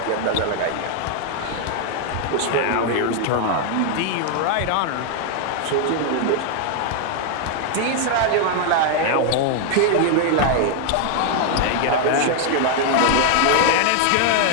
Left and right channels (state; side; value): different; both; correlation 0.00